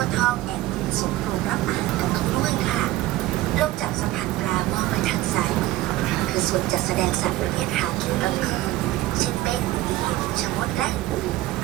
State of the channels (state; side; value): quieter; left; 16.3 dB